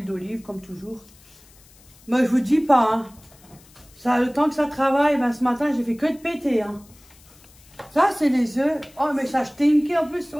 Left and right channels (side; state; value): left; noise; hiss, 26 dB below the sound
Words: d'olive, comme toujours. Moi, je vous dis pas, hein. Ça, le temps que ça travaille, ben, ce matin, j'ai fait que de péter, hein. Ça, c'est les œufs. Oh, mais ça stinky en plus.